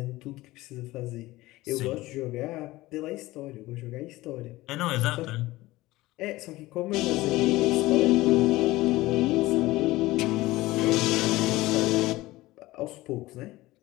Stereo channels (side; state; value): right; quieter; 18.6 dB